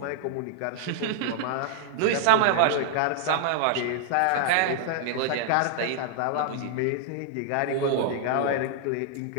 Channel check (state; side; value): different; both; correlation -0.01